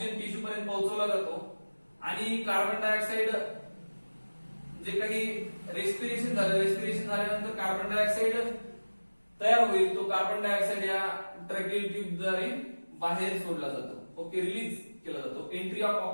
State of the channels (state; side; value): inverted; both; correlation -1.00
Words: टिश्यू पर्यंत पोहोचवला जातो. आणि कार्बन डायऑक्साइड जे काही रेस्पिरेशन झाल्यानंतर कार्बन डायऑक्साइड तयार होईल. तो कार्बन डायऑक्साइड या ट्रॅकियल ट्यूब द्वारे बाहेर सोडला जातो. ओके, रिलीज केला जातो. Entry of